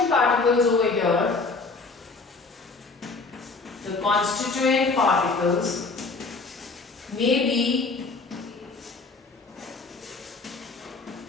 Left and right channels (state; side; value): quieter; right; 3.9 dB